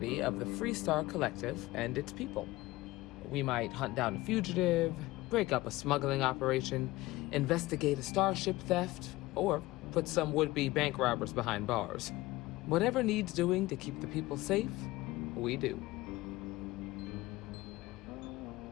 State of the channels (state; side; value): quieter; right; 19.1 dB